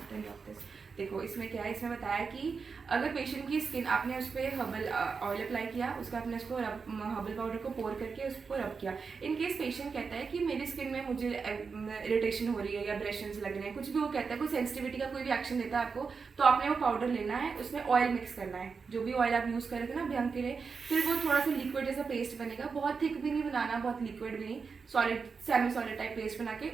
Then drop this. देखो इसमें क्या है, इसमें बताया कि अगर पेशेंट की स्किन आपने उस पर हर्बल ऑयल अप्लाई किया, उसका आपने उसको हर्बल पाउडर को पोर करके उसको रब किया। इन केस पेशेंट कहता है कि मेरी स्किन में मुझे इरिटेशन हो रही है या ब्रेशंस लग रहे हैं, कुछ भी वो कहता है, कोई सेंसिटिविटी का कोई भी एक्शन देता है आपको, तो आपने वो पाउडर लेना है, उसमें ऑयल मिक्स करना है, जो भी ऑयल आप यूज़ कर रहे थे ना अभ्यंग के लिए, फिर वो थोड़ा सा लिक्विड जैसा पेस्ट बनेगा, बहुत थिक भी नहीं बनाना, बहुत लिक्विड भी नहीं, solid semi solid type paste बना के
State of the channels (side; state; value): left; quieter; 5.2 dB